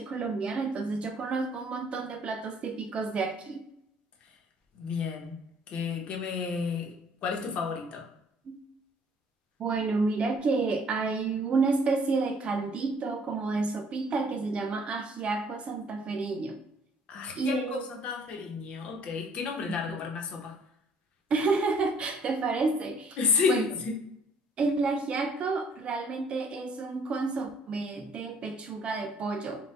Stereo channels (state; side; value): normal; both; correlation 0.60